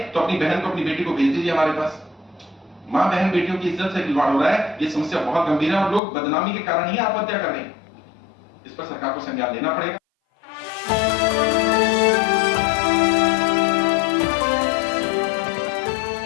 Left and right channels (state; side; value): drops out; right; at 6.0 s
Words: तो अपनी बहन को अपनी बेटी को भेज दीजिए हमारे पास। मां बहन बेटियों की इज्जत से खिलवाड़ हो रहा है, ये समस्या बहुत गंभीर है और लोग बदनामी के कारण ही आत्महत्या कर रहे हैं। इस पर सरकार को संज्ञान लेना पड़ेगा।